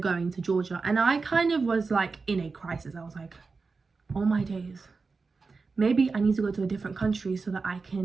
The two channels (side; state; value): left; quieter; 4.4 dB